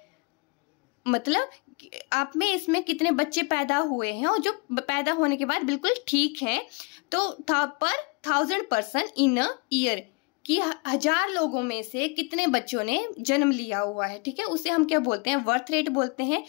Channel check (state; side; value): quieter; right; 29.9 dB